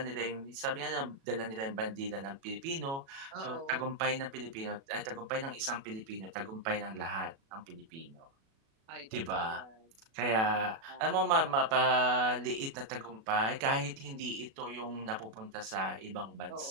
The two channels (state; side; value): late; left; 36 ms